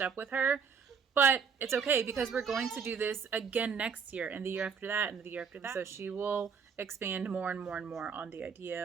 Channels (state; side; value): quieter; left; 6.2 dB